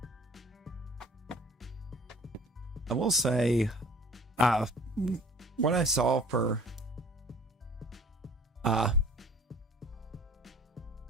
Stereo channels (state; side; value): normal; both; correlation 0.49